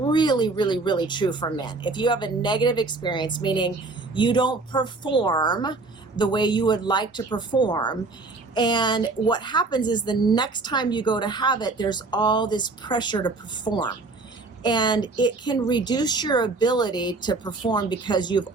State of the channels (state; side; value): quieter; left; 3.6 dB